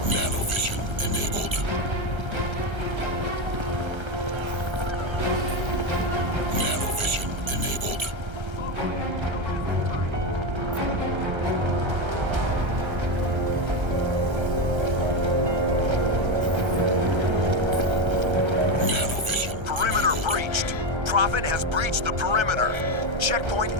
Nanovision enabled. Nanovision enabled. Nanovision. Perimeter breached. Prophet has breached the perimeter. Checkpoint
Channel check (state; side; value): late; left; 1.3 ms